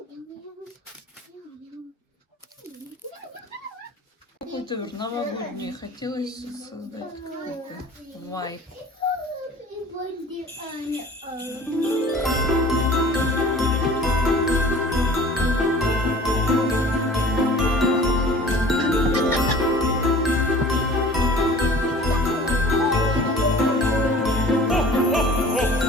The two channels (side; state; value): both; normal; correlation 0.46